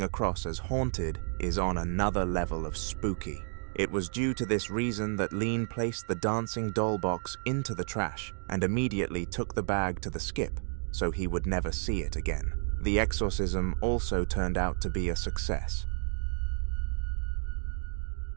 across as haunted is on another level of spooky. It was due to this reason that Lean placed the dancing doll box into the trash and immediately took the bag to the skip, so he would never see it again. The exorcism also turned out to be a success.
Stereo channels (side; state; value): left; silent; digital silence